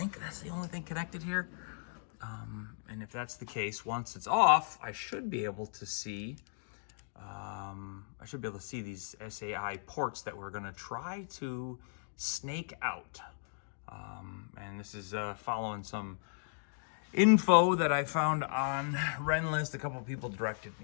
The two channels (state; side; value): silent; right; digital silence